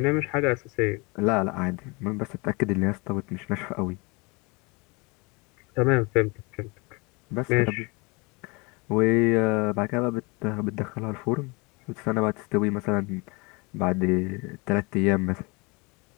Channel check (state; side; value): quieter; right; 27.8 dB